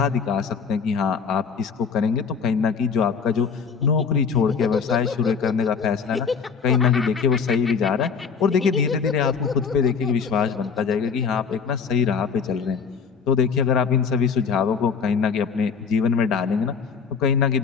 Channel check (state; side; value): quieter; right; 5.9 dB